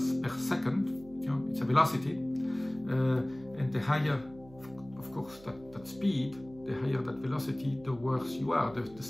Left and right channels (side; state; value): right; noise; hum, 21 dB below the sound